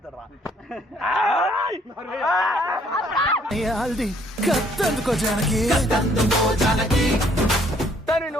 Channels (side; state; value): both; normal; correlation 0.64